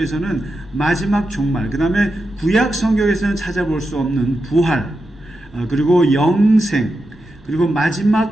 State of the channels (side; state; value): both; normal; correlation 0.88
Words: 마지막 종말, 그 다음에 구약 성경에서는 찾아볼 수 없는 부활, 그리고 영생, 그리고